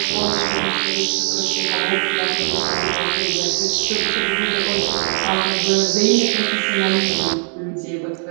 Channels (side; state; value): left; silent; 57 dB below the other